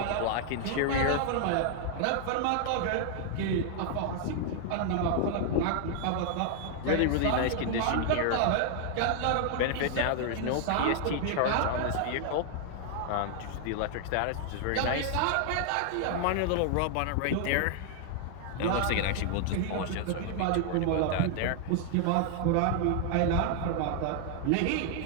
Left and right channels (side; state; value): both; different; correlation 0.00